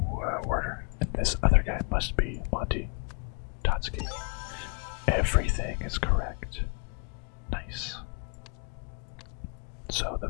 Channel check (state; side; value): quieter; right; 34.3 dB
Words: Werder, and this other guy must be Monty Totsky. Everything is correct. Nice. So the